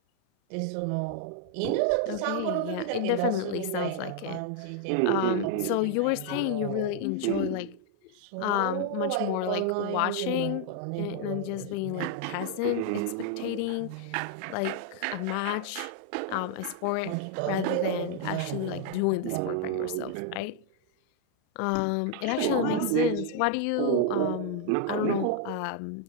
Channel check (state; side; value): different; both; correlation 0.00